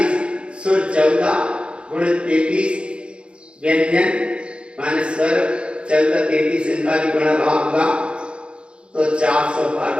सुर 14 गुणित 33 व्यंजन माने स्वर 14 33 इनका भी गुणा भाग होगा तो 400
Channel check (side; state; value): left; late; 0.056 ms